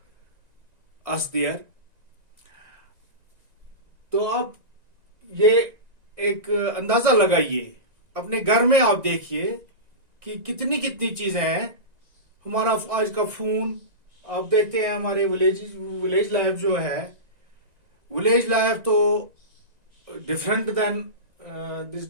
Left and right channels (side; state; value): left; late; 1.9 ms